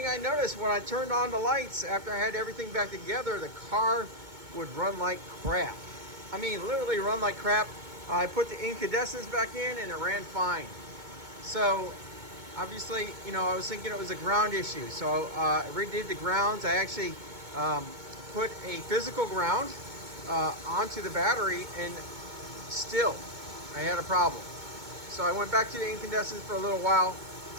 I noticed when I turned on the lights after I had everything back together, the car would run like crap. I mean, literally run like crap. I put the incandescents back in and it ran fine. So obviously, you know, I was thinking it was a ground issue. So I redid the grounds. I actually put a physical ground onto the battery, and still I had a problem. So I went back to the incandescents for a little while.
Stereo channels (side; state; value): left; late; 2.2 ms